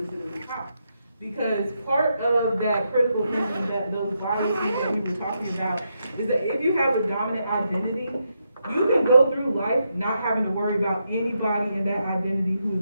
sit at the top. Because part of that critical thinking, that those biases that we were talking about, is that if you have a dominant identity, you can go through life not having to worry about anybody in that identity who is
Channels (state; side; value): inverted; both; correlation -0.81